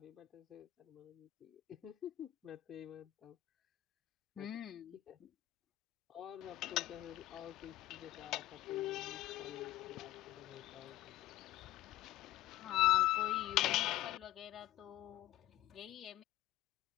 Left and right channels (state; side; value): quieter; right; 15.2 dB